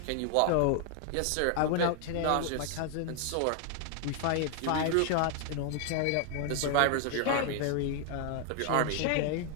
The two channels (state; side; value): different; both; correlation 0.00